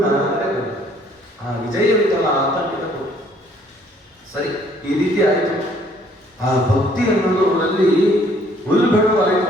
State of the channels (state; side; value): normal; both; correlation 0.62